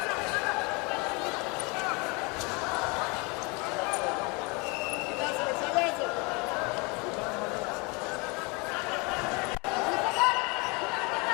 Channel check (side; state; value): right; quieter; 29.0 dB